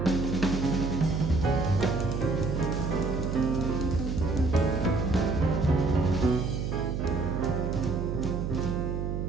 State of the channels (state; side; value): noise; right; hum, 2 dB below the sound